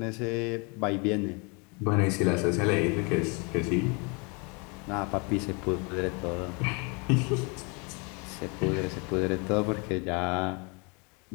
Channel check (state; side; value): quieter; right; 31.6 dB